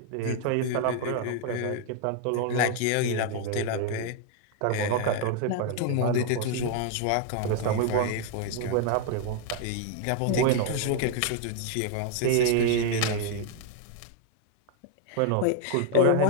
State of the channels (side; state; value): both; different; correlation 0.00